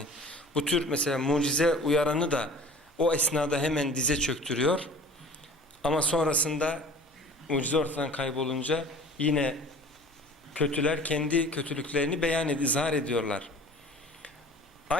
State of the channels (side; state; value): both; normal; correlation 0.45